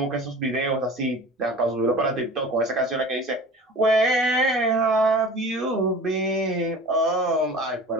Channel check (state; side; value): normal; both; correlation 0.39